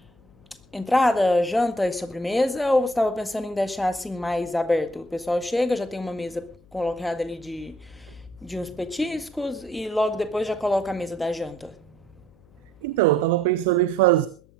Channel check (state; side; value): noise; left; hum, 28 dB below the sound